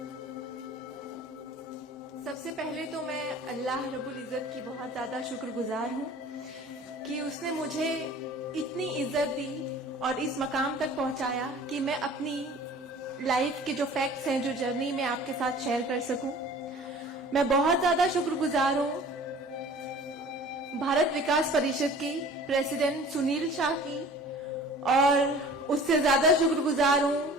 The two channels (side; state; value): both; normal; correlation 0.46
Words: सबसे पहले तो मैं अल्लाह रब्बुल इज़्ज़त की बहुत ज्यादा शुक्रगुजार हूँ कि उसने मुझे इतनी इज्जत दी और इस मकाम तक पहुंचाया कि मैं अपनी लाइफ के जो फैक्ट्स हैं, जो जर्नी में आपके साथ शेयर कर सकूं। मैं बहुत ज्यादा शुक्रगुजार हूँ भारत विकास परिषद की प्रेसिडेंट सुनील शाह की, और उससे ज्यादा शुक्रगुजार